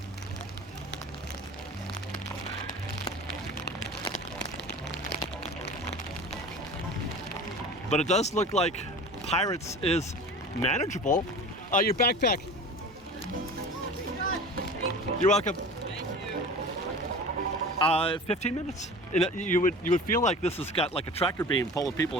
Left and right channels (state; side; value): normal; both; correlation 0.37